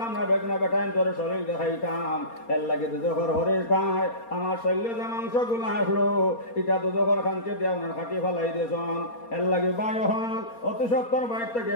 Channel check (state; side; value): late; right; 4.3 ms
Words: না বেগনা বেটাইন তোর শরীর দেখাইতাম এর লাগে দুজখর হরিষ্ঠায় আমার শৈল্য যে মাংস গুলো আসলো এটা দুজখর খানকে দিয়ে আপনার খাটি ফেলাই দিয়েছেন এর লাগে বাই হন অতি সত্তর বাইর থেকে